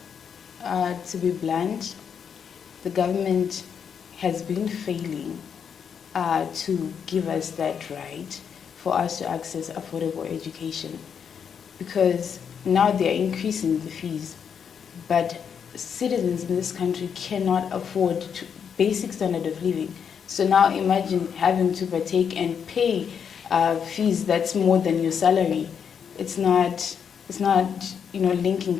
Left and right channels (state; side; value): quieter; right; 7.3 dB